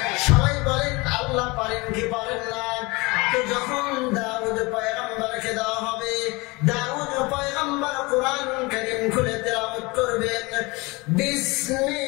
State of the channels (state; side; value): quieter; right; 24.7 dB